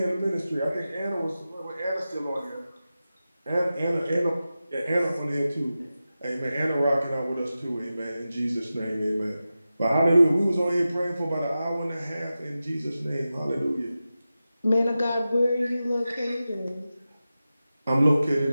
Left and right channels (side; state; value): both; inverted; correlation -0.93